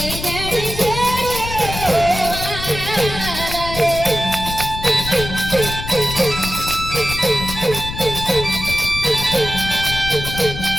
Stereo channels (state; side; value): noise; left; rumble, 8 dB below the sound